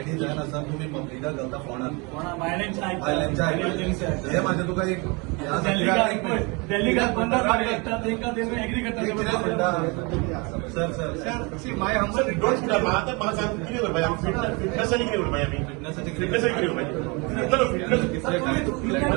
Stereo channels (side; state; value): left; quieter; 29.1 dB